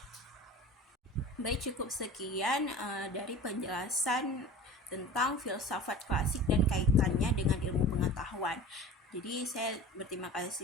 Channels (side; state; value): both; normal; correlation 0.38